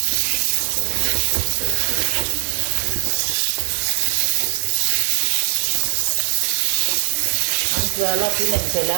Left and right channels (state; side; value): silent; left; 66 dB below the other